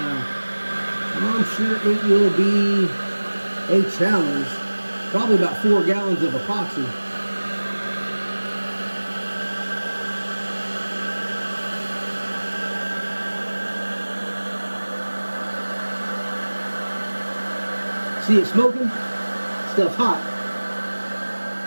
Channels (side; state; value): both; inverted; correlation -1.00